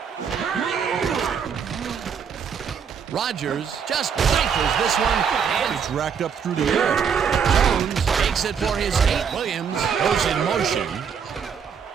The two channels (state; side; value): quieter; left; 6.9 dB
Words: Rodgers just rifles this one. And It's racked up through the air. Jones takes it for his 8. Williams goes in motion.